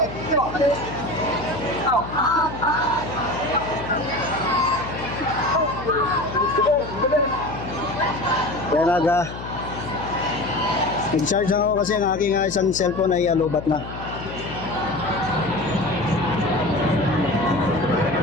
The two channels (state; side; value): noise; left; hum, 11 dB below the sound